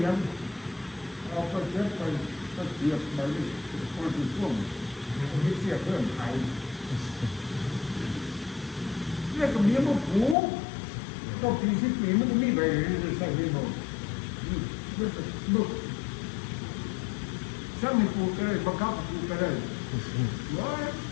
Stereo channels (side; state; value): right; drops out; at 10.4 s